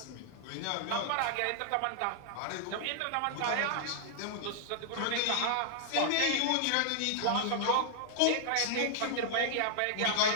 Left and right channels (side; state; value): both; different; correlation -0.01